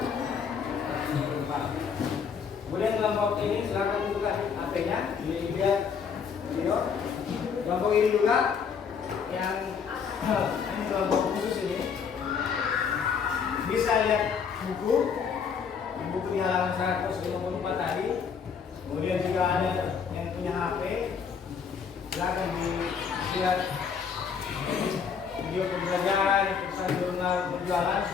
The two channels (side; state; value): right; quieter; 6.5 dB